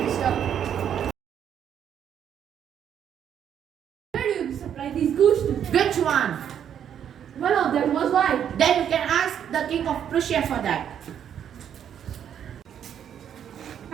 Where do you supply these goose to? Which one? One of them was white. Then you can ask the king of Prussia for that.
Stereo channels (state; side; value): quieter; left; 9.1 dB